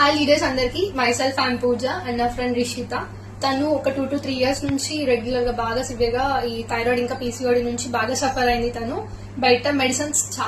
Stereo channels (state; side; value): identical; both; correlation 1.00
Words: leaders అందరికి, myself I'm puja and నా friend Rishitha. తను ఒక 2 to 3 years నుంచి రెగ్యులర్ గా బాగా సివియర్ గా ఈ థైరాయిడ్ ఇంకా పీసీఓడి నుంచి బాగా సఫర్ అయింది. తను బయట మెడిసిన్స్